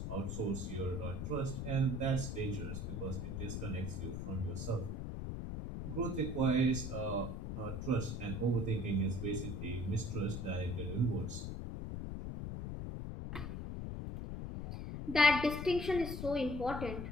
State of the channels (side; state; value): left; noise; rumble, 5 dB below the sound